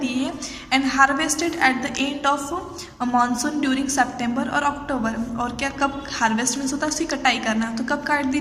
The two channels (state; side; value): identical; both; correlation 1.00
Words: है and harvested at the end of monsoon during September और अक्टूबर। और क्या कब हार्वेस्ट मीन्स होता है उसकी कटाई करना, तो कब काट दी